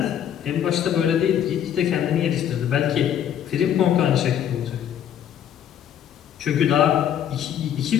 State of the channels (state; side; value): quieter; right; 9.7 dB